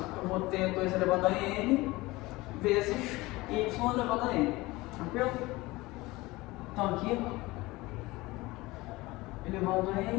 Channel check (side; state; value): right; quieter; 20.8 dB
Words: eu vou ter 2 elevado a n, vezes y elevado a n. Tranquilo? Então aqui, elevado a